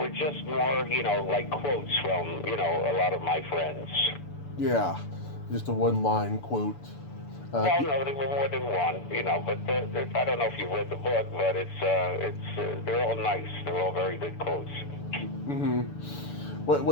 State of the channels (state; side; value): late; right; 6.9 ms